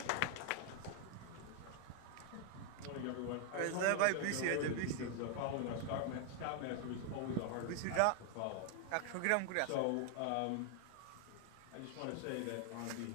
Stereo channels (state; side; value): different; both; correlation 0.00